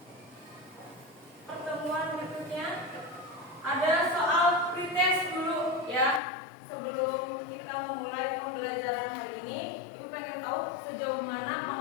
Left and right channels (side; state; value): right; drops out; at 6.2 s